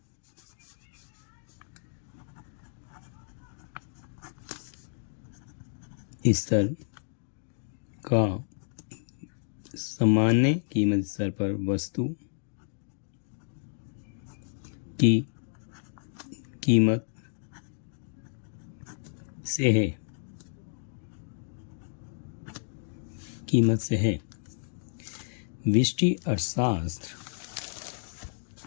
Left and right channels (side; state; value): right; silent; digital silence